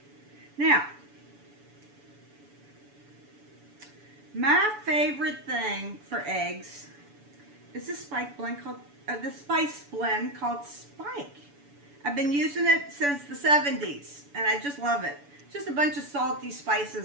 Now, my favorite thing for eggs is this spice blend called Spike. I've been using it since the 70s, and I just love it. It's just a bunch of salty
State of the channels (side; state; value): left; late; 7.0 ms